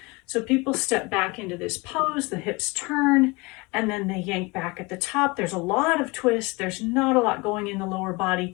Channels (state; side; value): quieter; right; 25.3 dB